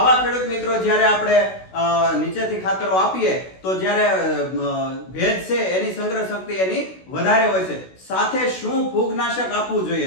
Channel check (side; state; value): right; late; 16 ms